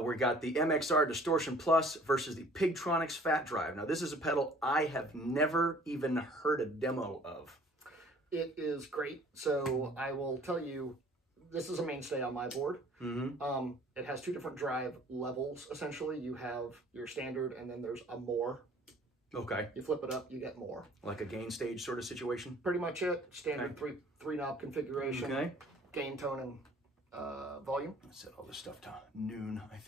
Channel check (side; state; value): both; normal; correlation 0.53